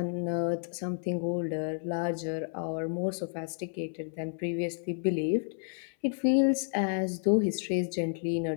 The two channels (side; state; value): right; silent; 57 dB below the other